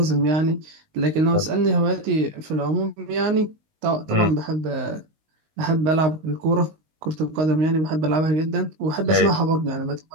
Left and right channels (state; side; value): late; left; 19 ms